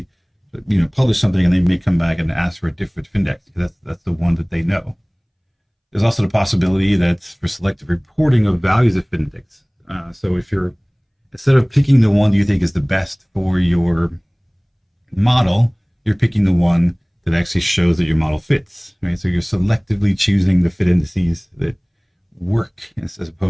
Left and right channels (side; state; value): both; identical; correlation 1.00